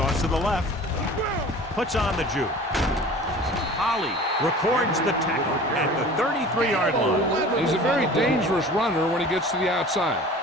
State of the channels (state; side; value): normal; both; correlation 0.42